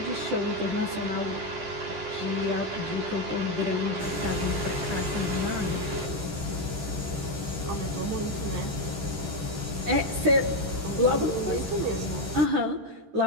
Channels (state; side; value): late; left; 13 ms